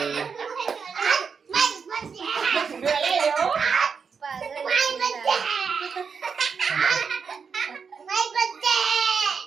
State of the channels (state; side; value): quieter; left; 5.9 dB